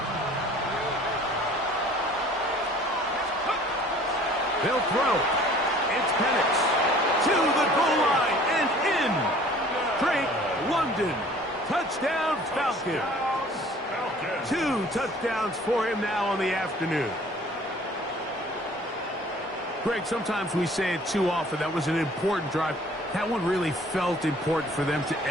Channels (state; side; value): normal; both; correlation 0.51